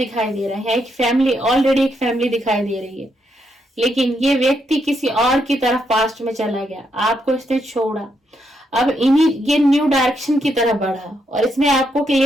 दे रहा है। एक फैमिली, ऑलरेडी एक फैमिली दिखाई दे रही है, लेकिन ये व्यक्ति किसी और की तरफ पास्ट में चला गया, आपको इसने छोड़ा, अब ये न्यू डायरेक्शन की तरफ बढ़ा, और इसने आपको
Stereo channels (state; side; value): normal; both; correlation 0.79